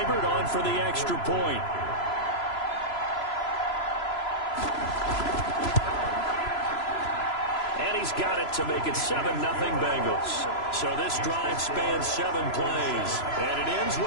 on for the extra point. And he's got it to make it 7-0 Bengals. So this drive spans 7 plays, and it ends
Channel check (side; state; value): right; late; 3.0 ms